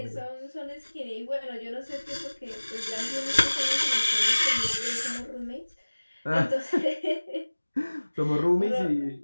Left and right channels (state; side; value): inverted; both; correlation -1.00